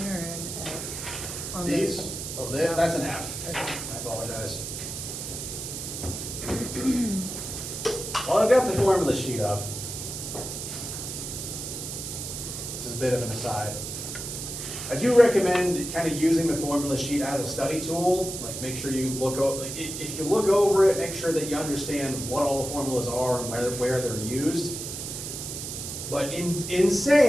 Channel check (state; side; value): noise; right; hiss, 7 dB below the sound